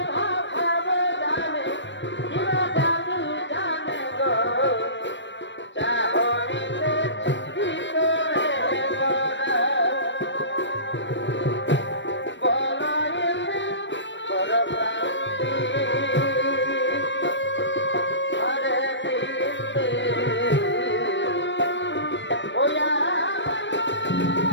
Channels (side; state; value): right; late; 0.53 ms